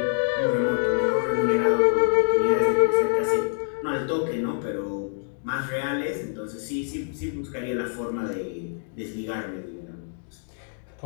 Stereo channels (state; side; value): silent; right; 61 dB below the other